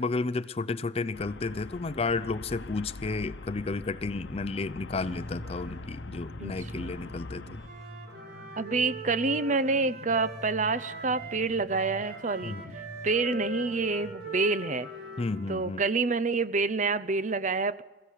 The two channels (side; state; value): both; normal; correlation 0.27